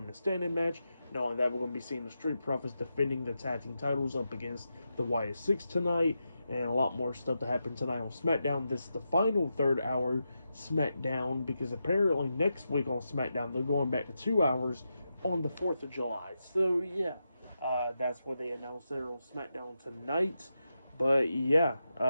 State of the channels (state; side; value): inverted; both; correlation -0.88